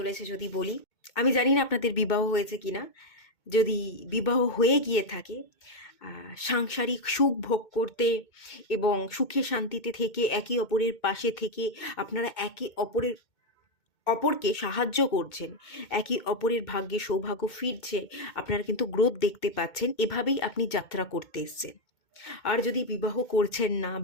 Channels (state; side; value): late; right; 2.2 ms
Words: যদি বলি? আমি জানি না আপনাদের বিবাহ হয়েছে কিনা। যদি বিবাহ হয়ে গিয়ে থাকে, সাংসারিক সুখ ভোগ করতে এবং সুখে শান্তিতে থেকে একে অপরের পাশে থেকে আপনারা একে অপরকে সাহায্য করছেন, একে অপরের ভাগ্যে সৌভাগ্য ফিরছে, আপনারা কিন্তু গ্রোথ দেখতে পাচ্ছেন, এভাবেই আপনি যাত্রা করতে এসছেন। আর যদি বিবাহ করছেন না